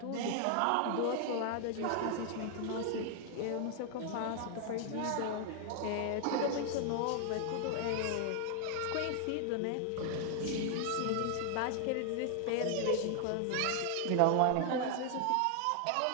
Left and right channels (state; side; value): different; both; correlation 0.00